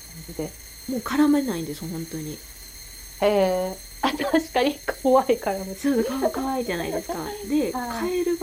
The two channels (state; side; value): identical; both; correlation 1.00